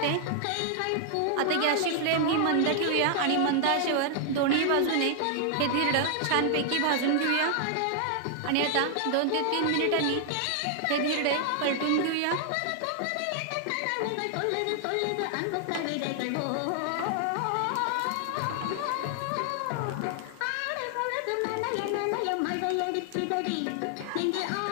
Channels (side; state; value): both; different; correlation 0.00